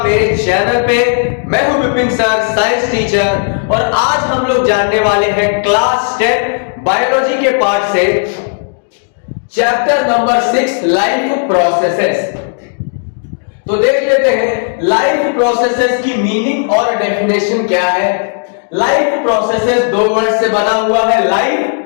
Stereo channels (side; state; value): right; silent; 61 dB below the other